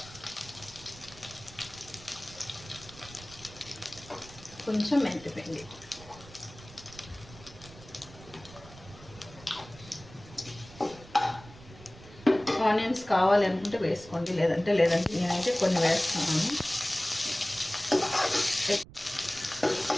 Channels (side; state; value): right; noise; rumble, 19 dB below the sound